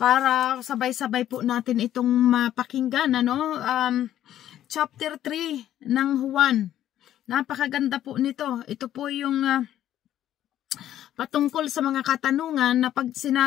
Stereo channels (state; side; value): quieter; right; 11.9 dB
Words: para sabay-sabay po natin itong mapakinggan. Chapter 3 ng Juan. Napakaganda po nito. Ito po yung patungkol sa mga katanungan na pag